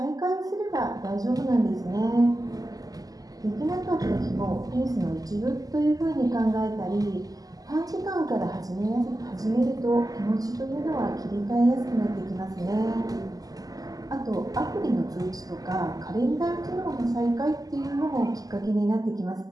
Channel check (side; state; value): left; late; 0.17 ms